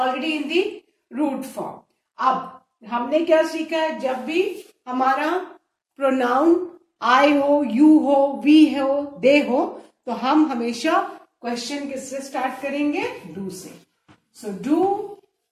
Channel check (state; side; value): identical; both; correlation 1.00